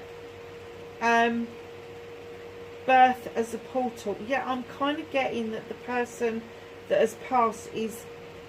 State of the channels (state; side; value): identical; both; correlation 1.00